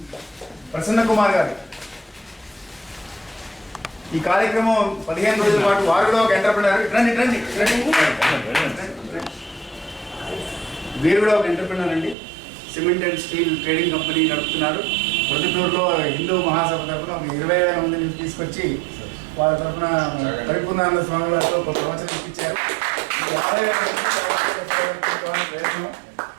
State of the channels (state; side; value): drops out; left; at 12.2 s